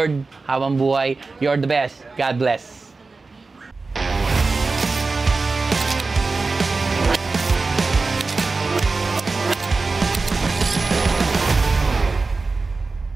habang buhay. You're the best. God bless.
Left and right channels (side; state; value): left; quieter; 3.9 dB